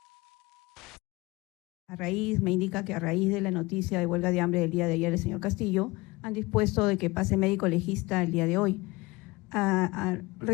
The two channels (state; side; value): quieter; right; 22.5 dB